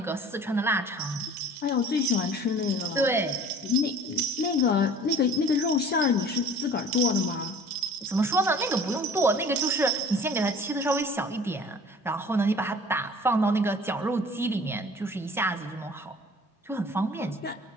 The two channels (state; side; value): normal; both; correlation 0.47